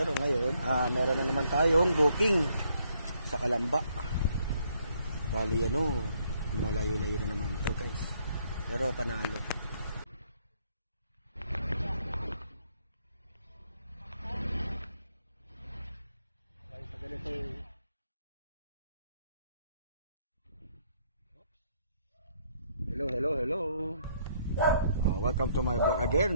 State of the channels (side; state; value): both; inverted; correlation -0.69